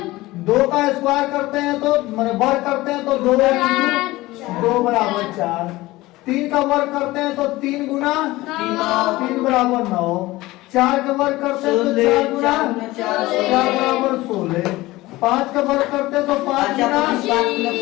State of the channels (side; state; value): right; quieter; 18.9 dB